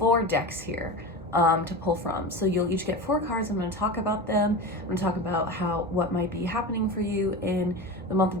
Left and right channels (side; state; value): both; normal; correlation 0.27